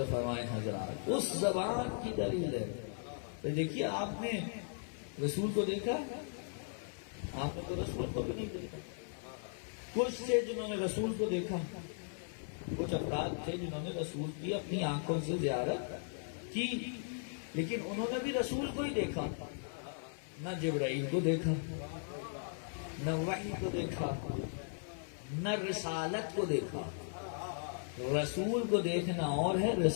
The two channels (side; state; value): right; silent; 53 dB below the other